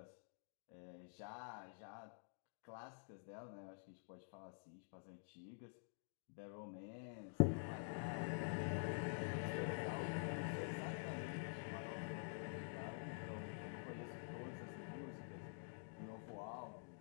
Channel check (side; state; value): right; silent; digital silence